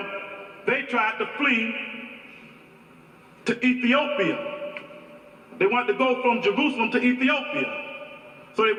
they tried to flee to Ethiopia. They wanted to go from Jerusalem to Ethiopia. So they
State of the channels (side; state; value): both; identical; correlation 1.00